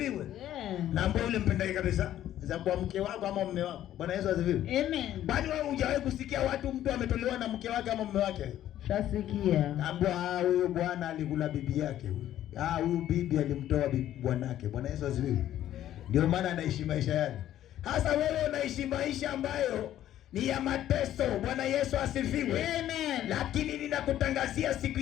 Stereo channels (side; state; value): right; quieter; 12.2 dB